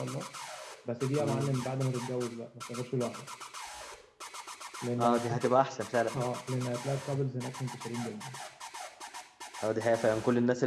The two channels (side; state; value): both; identical; correlation 1.00